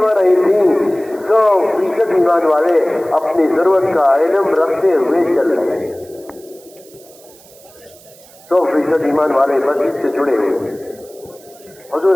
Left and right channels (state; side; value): noise; right; hiss, 25 dB below the sound